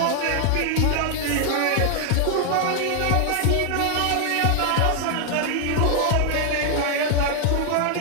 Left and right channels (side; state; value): both; different; correlation 0.00